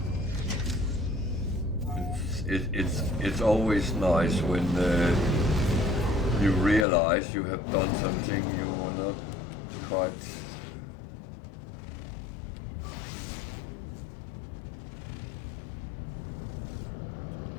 It's always nice when you realize you have done something you were not quite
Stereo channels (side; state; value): right; drops out; at 6.9 s